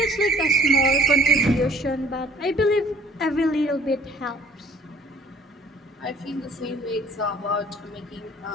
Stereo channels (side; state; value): both; normal; correlation 0.54